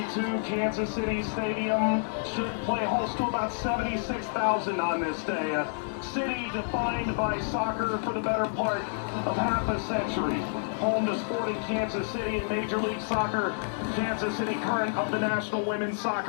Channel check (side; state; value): right; silent; digital silence